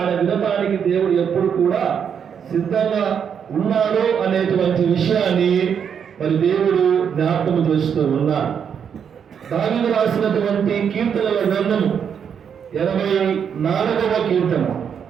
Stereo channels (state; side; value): quieter; left; 7.6 dB